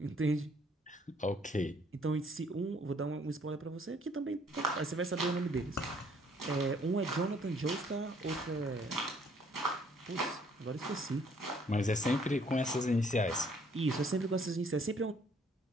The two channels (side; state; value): both; normal; correlation 0.63